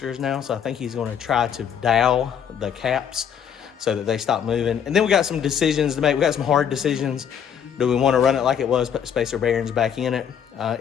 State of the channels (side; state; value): right; quieter; 8.3 dB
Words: now, so I think he's going to try to dowel the caps so that they stop moving. And then we got some decisions to make. We got some hard decisions. Do we want to run it like it was, put spacer bearings back in it?